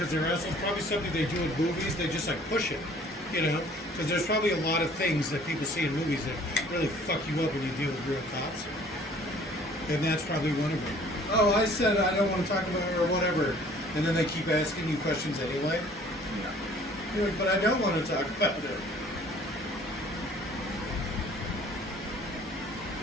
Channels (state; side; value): normal; both; correlation 0.54